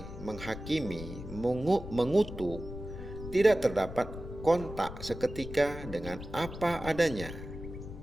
menghakimi, mengutuk, tidak terdapat kontak seketika dengan apa adanya.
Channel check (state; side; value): noise; left; rumble, 11 dB below the sound